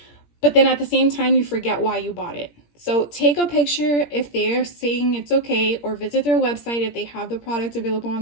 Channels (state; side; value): late; right; 17 ms